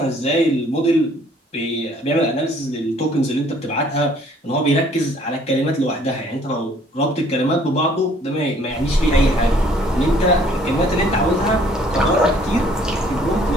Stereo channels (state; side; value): normal; both; correlation 0.59